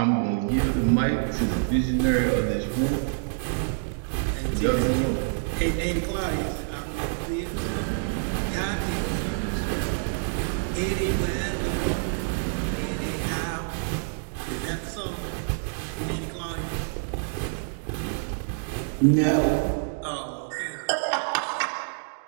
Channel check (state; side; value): silent; left; digital silence